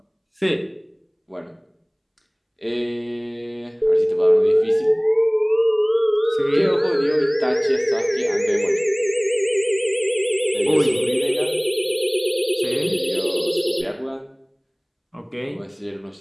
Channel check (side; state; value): both; identical; correlation 1.00